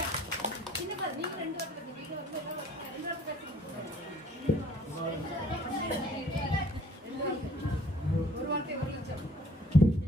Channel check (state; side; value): normal; both; correlation 0.56